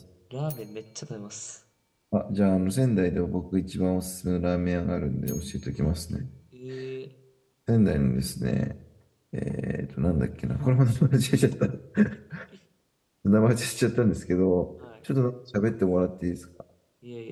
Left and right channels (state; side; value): identical; both; correlation 1.00